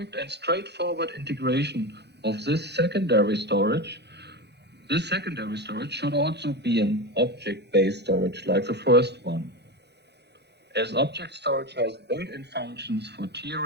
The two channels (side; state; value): left; late; 0.49 ms